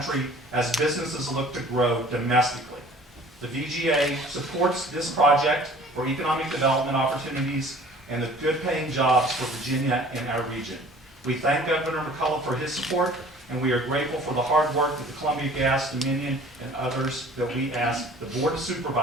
as businesses look to grow domestically. The VGA supports this project for economic development opportunities and the good paying jobs for Virginia and our region. We thank Governor McAuliffe for his support, and we are grateful for the hard work that the Columbia Gas, Dominion, and others that we ask the Board of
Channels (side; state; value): both; normal; correlation 0.49